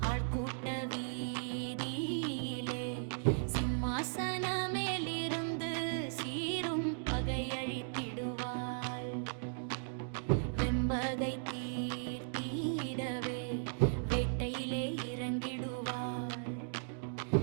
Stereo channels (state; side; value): silent; left; digital silence